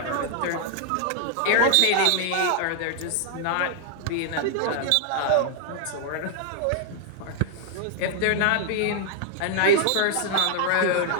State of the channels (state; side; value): different; both; correlation 0.00